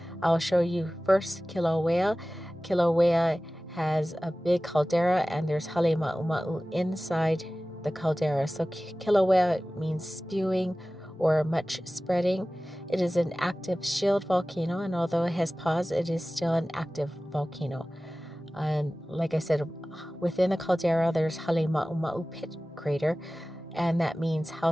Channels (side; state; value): both; normal; correlation 0.97